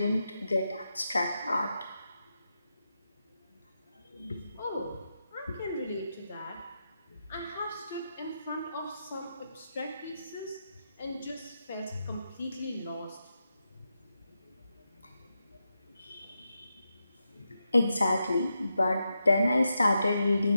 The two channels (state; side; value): inverted; both; correlation -0.87